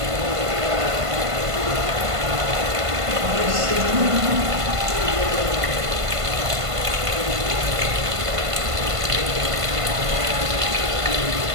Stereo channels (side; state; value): left; late; 1.5 ms